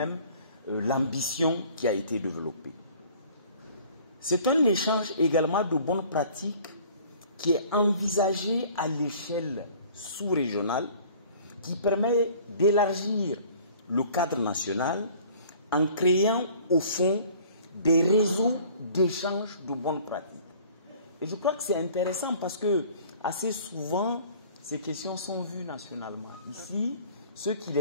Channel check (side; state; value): both; inverted; correlation -0.51